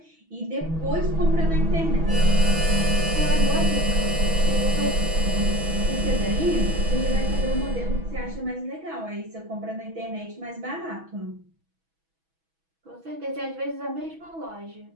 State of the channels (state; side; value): late; left; 6.2 ms